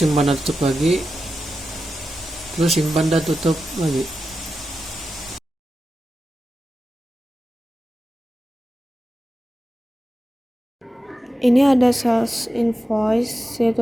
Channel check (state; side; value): normal; both; correlation 0.92